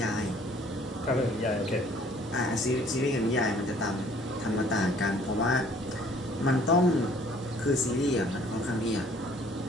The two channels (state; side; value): normal; both; correlation 0.57